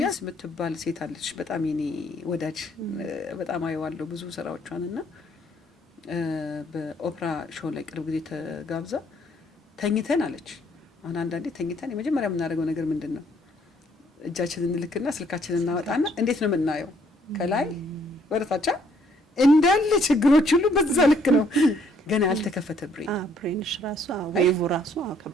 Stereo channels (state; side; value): normal; both; correlation 0.65